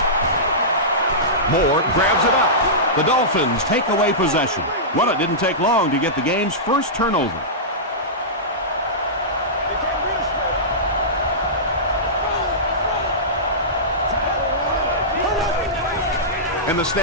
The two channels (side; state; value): both; normal; correlation -0.17